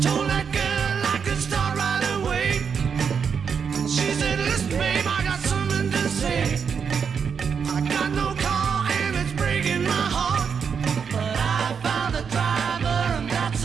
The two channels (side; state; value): left; quieter; 6.5 dB